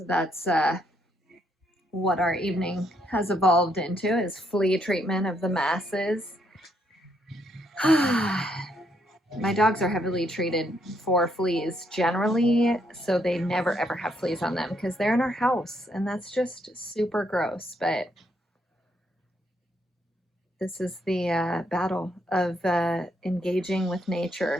that's what our evening has evolved into, is flea treatment of the masses. My dogs are heavily treated for fleas generally, so they never ever have fleas on them because they're in our house, and that's just super gross. But this is the battle of engaging with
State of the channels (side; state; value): both; normal; correlation 0.74